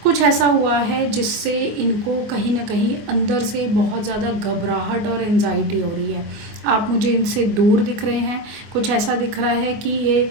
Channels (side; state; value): left; late; 24 ms